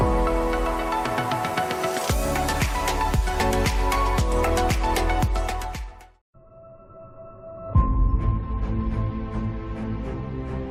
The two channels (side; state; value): both; identical; correlation 1.00